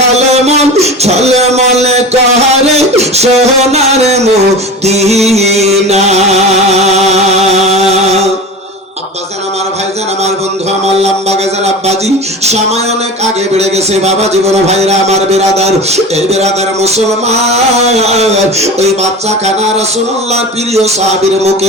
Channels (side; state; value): both; normal; correlation 0.32